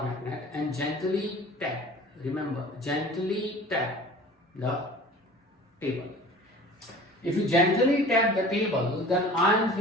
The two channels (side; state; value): both; normal; correlation 0.43